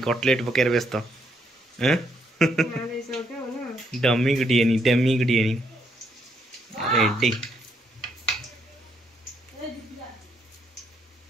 कटलेट पकेर व्यस्त हैं डमी गुड़ियानी रेडी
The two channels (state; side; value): normal; both; correlation 0.74